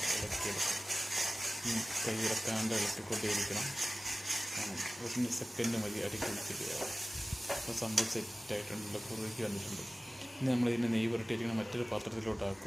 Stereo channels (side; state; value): both; normal; correlation 0.97